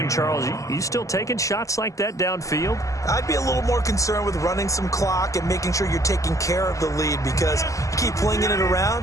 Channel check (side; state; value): right; late; 0.16 ms